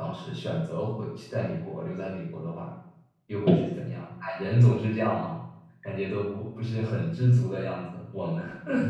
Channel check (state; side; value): identical; both; correlation 1.00